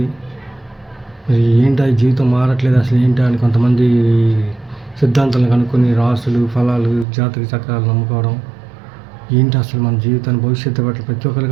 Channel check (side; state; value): left; drops out; at 7.1 s